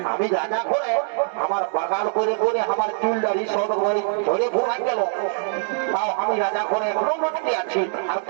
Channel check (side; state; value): left; silent; digital silence